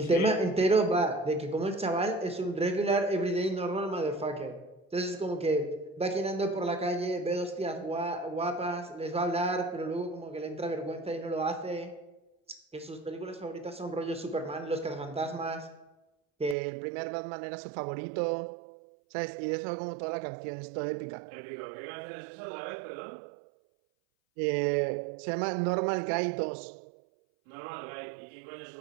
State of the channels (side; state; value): left; drops out; at 16.6 s